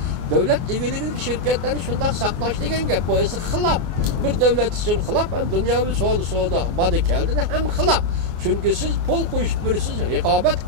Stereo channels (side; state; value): left; late; 24 ms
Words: Devlet ilgili şirketlerini şundan saklaş degen gap. Bu esi xilap. Bir devlet için xilap hem dünyavi soğuda badı geldiğinde hem xilap. Çünkü siz pul koyup birisiz, rekabet